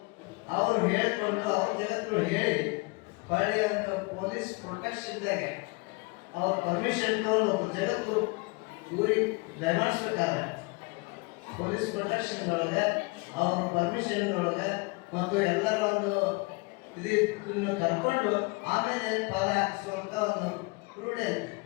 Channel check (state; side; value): quieter; right; 27.6 dB